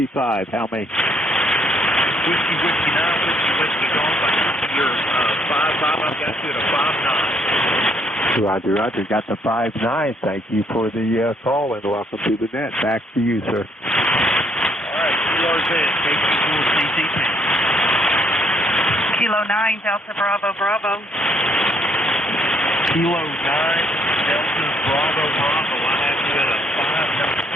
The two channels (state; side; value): normal; both; correlation 0.68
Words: How many? Whiskey 9, Whiskey Golf. I copy your 5-5. I've got you at a 5-9. Roger. Got the 5-9. Thank you for the call, and welcome to the net. Back to you, sir. All right, QRZ, KC4CCP. Kilo 9, Delta Bravo, Bravo. Kilo 9, Delta Bravo, Bravo. I have you at a